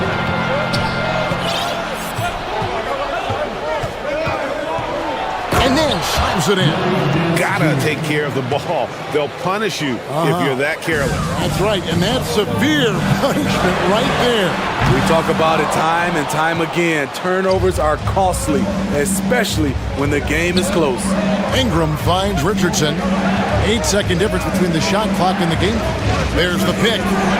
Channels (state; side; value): identical; both; correlation 1.00